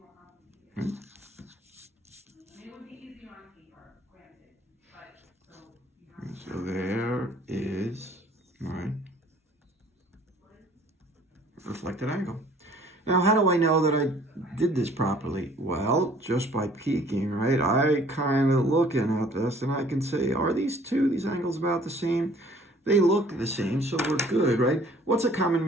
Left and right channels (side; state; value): both; normal; correlation 0.55